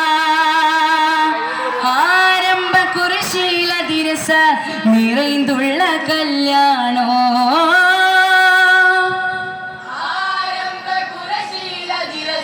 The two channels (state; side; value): identical; both; correlation 1.00